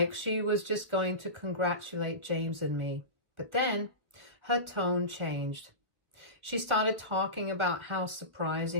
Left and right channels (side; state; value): left; late; 1.4 ms